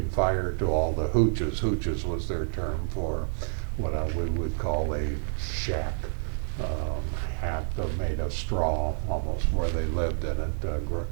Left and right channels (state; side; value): silent; left; digital silence